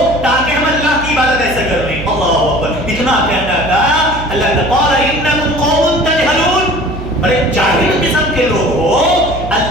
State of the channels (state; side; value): noise; right; hum, 10 dB below the sound